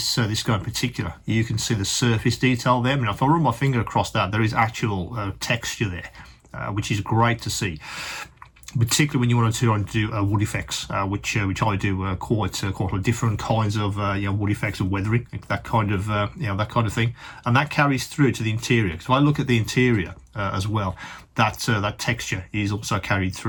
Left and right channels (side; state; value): both; identical; correlation 1.00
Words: guy in particular, you can see the surface detail there. I mean, if I run my finger across that, there is actual texture there. which is great to see, particularly when you want to do wood effects, which I do quite a lot of different kinds of wood effects and weathering, that kind of that kind of thing, and that carries through to the interior. So I look at the interior as well. That texture is also carried